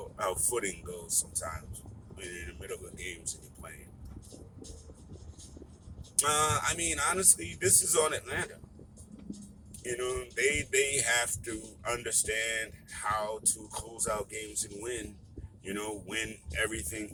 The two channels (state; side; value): identical; both; correlation 1.00